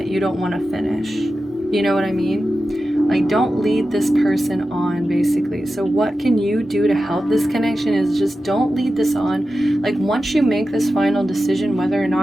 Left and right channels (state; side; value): normal; both; correlation 0.92